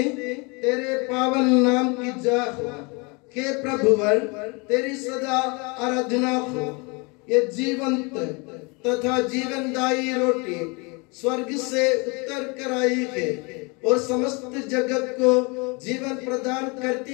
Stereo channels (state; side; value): quieter; right; 29.5 dB